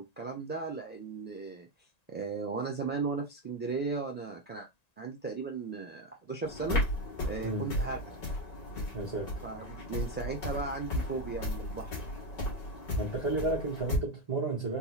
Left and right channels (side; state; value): right; late; 1.9 ms